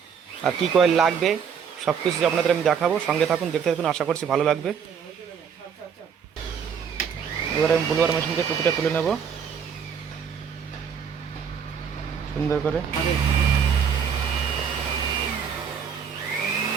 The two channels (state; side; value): quieter; left; 7.1 dB